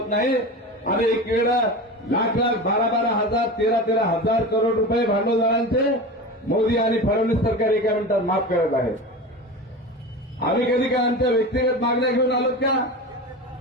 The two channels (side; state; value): both; normal; correlation 0.28